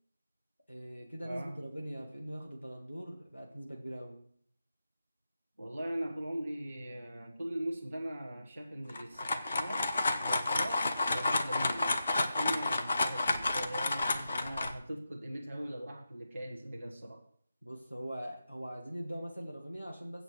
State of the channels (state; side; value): inverted; both; correlation -0.89